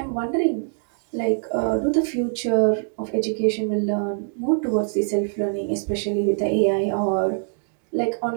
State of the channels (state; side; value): silent; left; digital silence